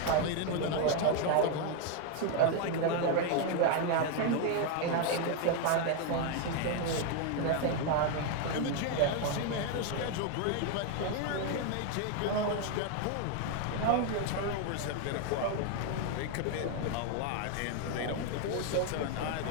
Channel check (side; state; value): both; different; correlation 0.01